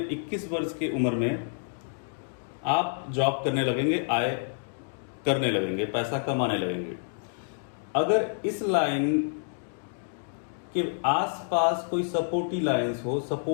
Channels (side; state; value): right; silent; 59 dB below the other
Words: 21 वर्ष की उम्र में आप जॉब करने लगेंगे, आय करने लगेंगे, पैसा कमाने लगेंगे। अगर इस लाइन कि आसपास कोई सपोर्टिव लाइंस हो,